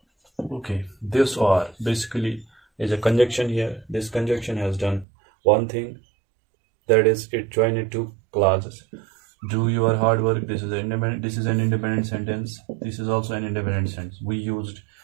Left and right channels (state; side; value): drops out; left; at 5.1 s